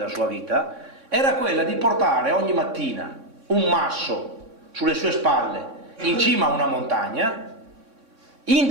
sua vita, era quella di portare ogni mattina un masso sulle sue spalle in cima a una montagna,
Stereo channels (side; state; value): left; late; 3.6 ms